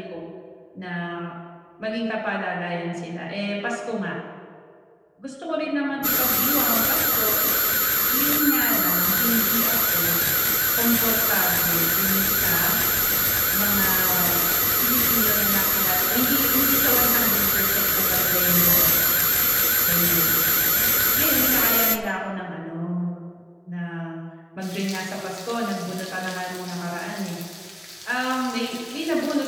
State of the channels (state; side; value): identical; both; correlation 1.00